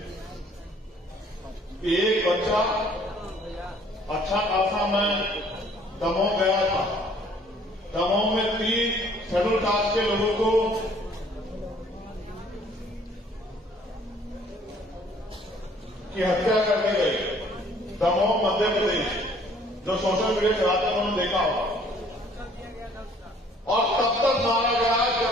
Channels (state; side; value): normal; both; correlation 0.58